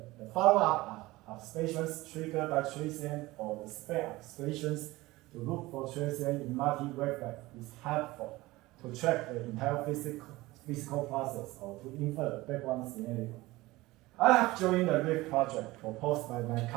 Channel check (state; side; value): quieter; left; 19.6 dB